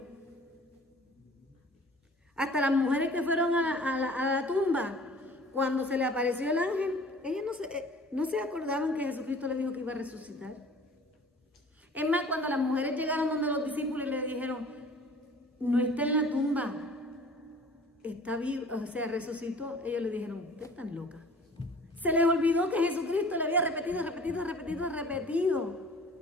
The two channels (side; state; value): both; normal; correlation 0.48